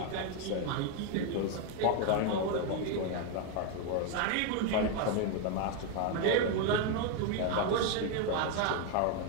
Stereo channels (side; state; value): both; different; correlation 0.02